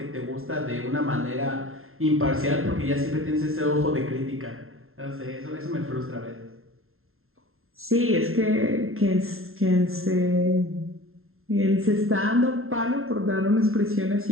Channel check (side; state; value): left; late; 0.62 ms